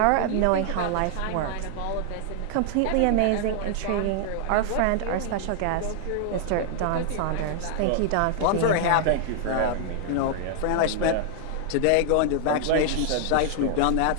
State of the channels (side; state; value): both; different; correlation 0.00